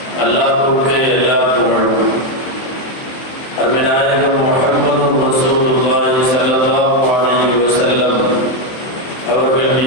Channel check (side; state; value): right; late; 23 ms